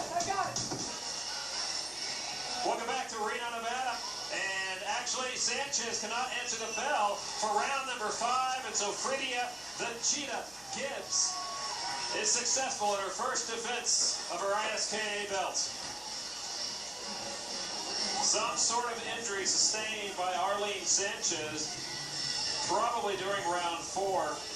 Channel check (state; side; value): noise; right; hum, 27 dB below the sound